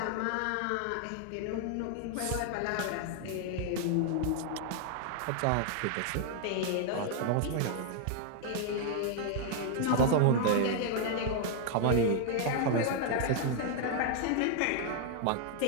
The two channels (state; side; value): different; both; correlation 0.00